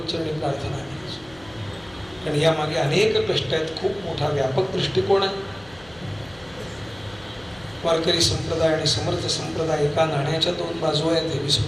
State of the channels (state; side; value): noise; left; hum, 24 dB below the sound